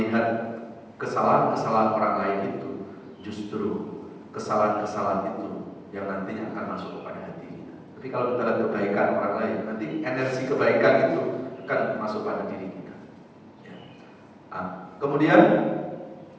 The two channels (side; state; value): both; identical; correlation 1.00